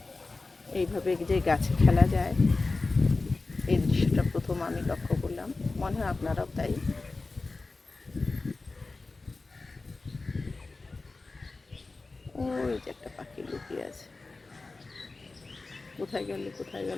এইভাবে যে গাছে খেলা যায়, এই দৃশ্যটা প্রথম আমি লক্ষ্য করলাম, মনে হয় আপনারাও তাই। ওই যে একটা পাখি লুকিয়ে আছে, কোথায় গেল কোথায়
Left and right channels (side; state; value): right; quieter; 3.6 dB